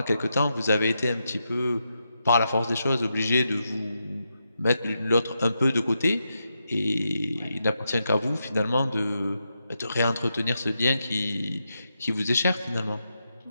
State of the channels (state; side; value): inverted; both; correlation -0.85